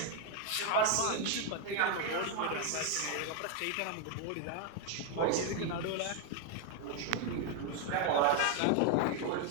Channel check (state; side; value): different; both; correlation 0.01